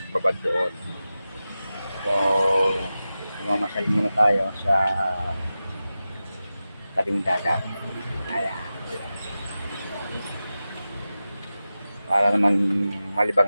doon. So, mamasyal muna tayo sa tabing dagat. Ayan, para naman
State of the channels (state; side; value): inverted; both; correlation -0.94